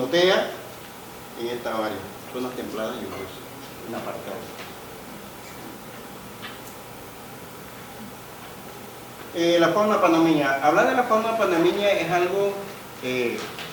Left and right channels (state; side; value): identical; both; correlation 1.00